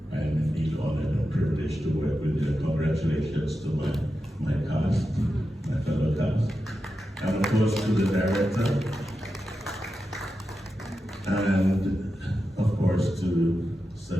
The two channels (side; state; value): both; normal; correlation 0.90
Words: I am indeed honored and privileged to work with you. Congratulations to my cast, my fellow cast, and of course to the director, and of course to